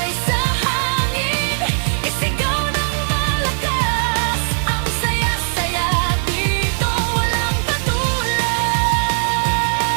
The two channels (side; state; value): left; silent; 67 dB below the other